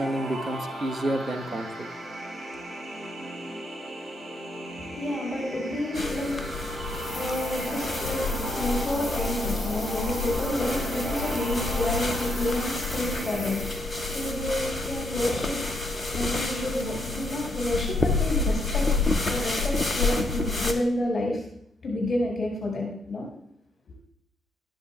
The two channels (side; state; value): both; normal; correlation 0.76